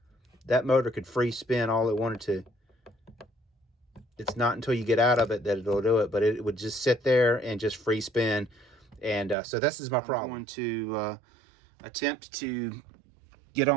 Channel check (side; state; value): left; drops out; at 9.3 s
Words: that motor could free spin all it wanted to. It's not until you get out of it that it'll do it, but it would just sit there and just free spin. And so this is my problem. I'm going to attempt to get